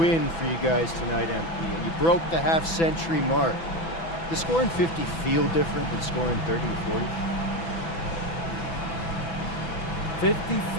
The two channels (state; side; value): late; right; 6.0 ms